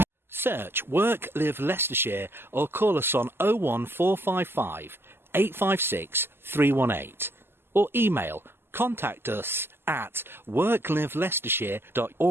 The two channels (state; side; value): late; left; 0.11 ms